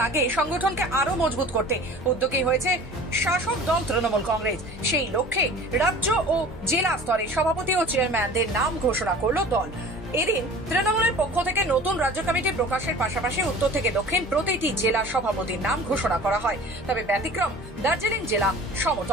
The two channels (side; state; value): both; normal; correlation 0.43